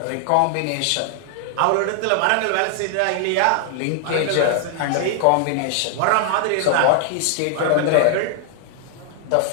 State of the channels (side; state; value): both; different; correlation 0.00